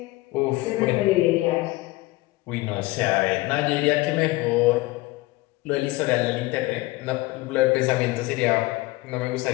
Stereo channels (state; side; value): quieter; right; 20.3 dB